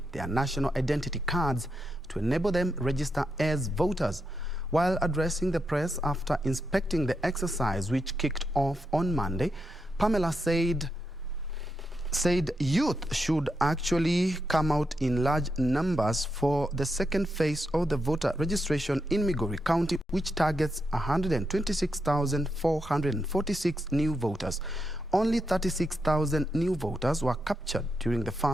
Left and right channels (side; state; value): both; normal; correlation 0.84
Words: their national identity cards to enable them register as voters. While addressing the press after inspecting the exercise which kicked off on Monday, Pamela said youth should actually come out in large numbers for the second phase of the voter registration in Migori County, which targets 126,446 new voters. Only 36,000 new voters were captured during the